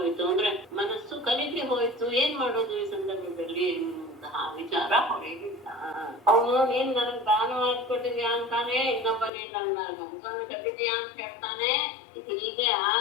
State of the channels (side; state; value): right; drops out; at 9.3 s